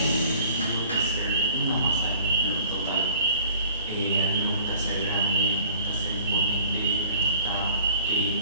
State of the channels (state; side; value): inverted; both; correlation -0.51